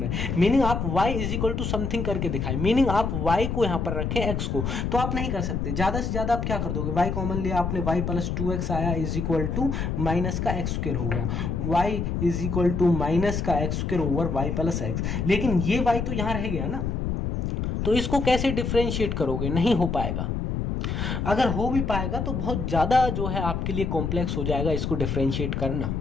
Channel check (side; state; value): left; noise; rumble, 1 dB below the sound